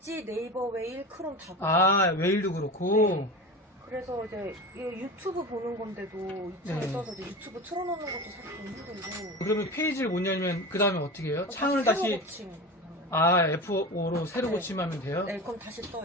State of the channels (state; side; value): normal; both; correlation 0.29